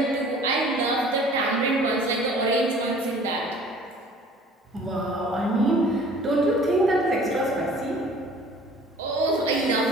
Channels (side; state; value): both; normal; correlation 0.50